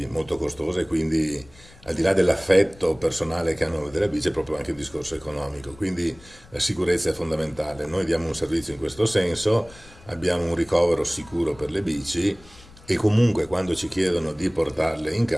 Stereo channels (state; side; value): noise; left; rumble, 23 dB below the sound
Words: molto costose, quindi al di là dell'affetto personale che hanno della bici è proprio anche un discorso economico, quindi la sicurezza è fondamentale. Noi diamo un servizio in questo senso, abbiamo un ricovero sicuro per le bici e comunque quando ci chiedono di portarle in